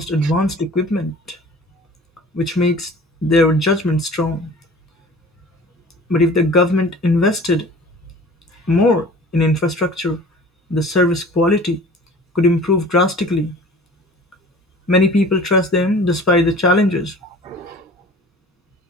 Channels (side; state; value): both; normal; correlation 0.44